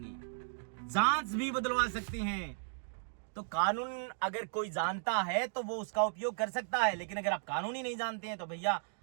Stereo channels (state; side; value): silent; left; digital silence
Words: जांच भी बदलवा सकते हैं। तो कानून अगर कोई जानता है तो वो उसका उपयोग कर सकता है, लेकिन अगर आप कानून ही नहीं जानते हैं तो भैया